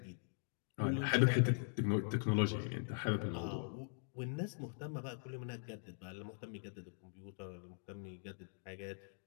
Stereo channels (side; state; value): right; silent; digital silence